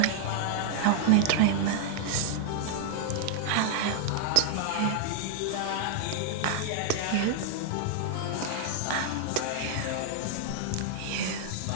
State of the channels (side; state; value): both; different; correlation 0.00